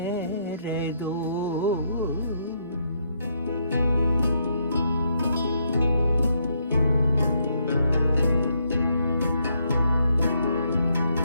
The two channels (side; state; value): both; inverted; correlation -0.75